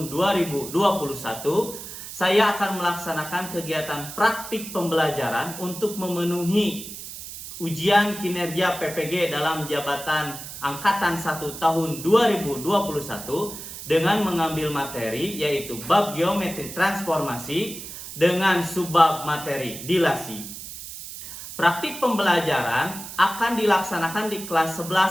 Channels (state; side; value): noise; right; hiss, 11 dB below the sound